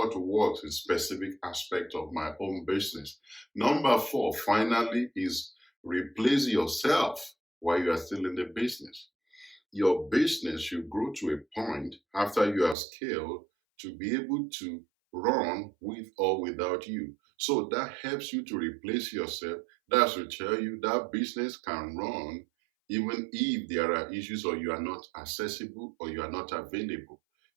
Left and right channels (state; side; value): drops out; left; at 12.8 s